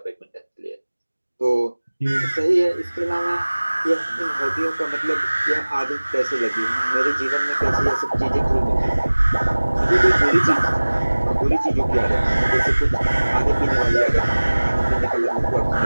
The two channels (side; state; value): both; inverted; correlation -1.00